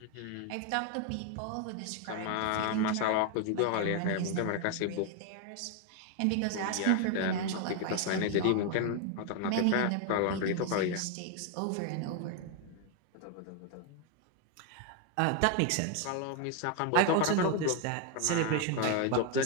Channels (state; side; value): different; both; correlation 0.01